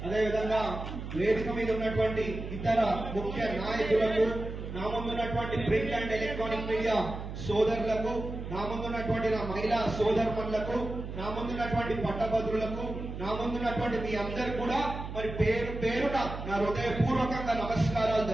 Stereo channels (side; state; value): right; noise; hum, 8 dB below the sound